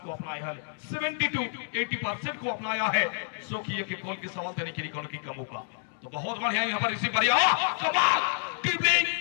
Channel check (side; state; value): right; silent; digital silence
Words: अपनाया है 70-80% को अपनाया है, सो कि ये गोल के सवाल देने के लिए कॉर्नर किक का मौका, तो बहुत बढ़िया यहाँ पर रिसीव बढ़िया कमाल ड्रिबलिंग